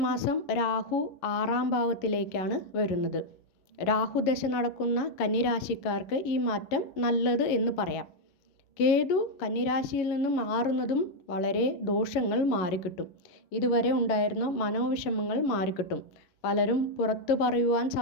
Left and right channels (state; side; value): late; right; 11 ms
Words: മാസം രാഹു 6-ാം ഭാവത്തിലേക്കാണ് വരുന്നത്. രാഹുദശ നടക്കുന്ന കന്നിരാശിക്കാർക്ക് ഈ മാറ്റം നല്ലത് എന്ന് പറയാം. കേതു കന്നിരാശിയിൽ നിന്ന് മാറുന്നതും വളരെ ദോഷങ്ങൾ മാറിക്കിട്ടും. ഇതുവരെ ഉണ്ടായിരുന്ന മനോവിഷമങ്ങൾ മാറിക്കിട്ടും. പലരും പുറത്തു പറയുവാൻ